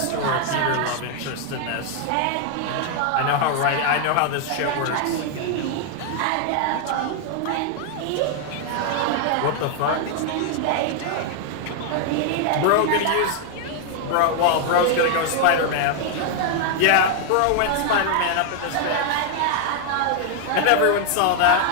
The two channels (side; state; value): both; different; correlation 0.00